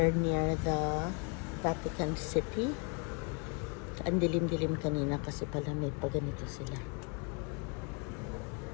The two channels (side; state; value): right; quieter; 35.5 dB